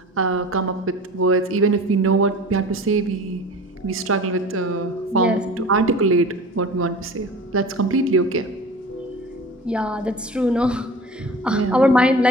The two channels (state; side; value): normal; both; correlation 0.38